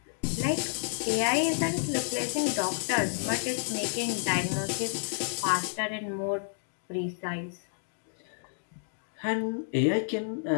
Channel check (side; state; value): right; silent; digital silence